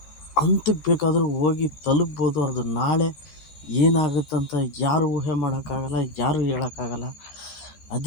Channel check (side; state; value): right; late; 14 ms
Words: ಹಂತಕ್ಕೆ ಬೇಕಾದರೂ ಹೋಗಿ ತಲುಪ್ಬೋದು. ಅದು ನಾಳೆ ಏನಾಗುತ್ತಂತ ಯಾರು ಊಹೆ ಮಾಡೋಕ್ಕಾಗಲ್ಲ, ಯಾರು ಹೇಳೋಕ್ಕಾಗಲ್ಲ.